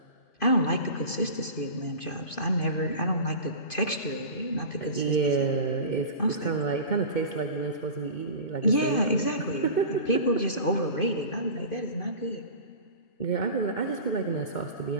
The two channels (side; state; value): right; late; 2.5 ms